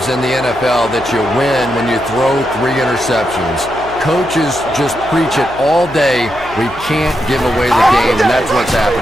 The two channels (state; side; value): noise; left; hum, 18 dB below the sound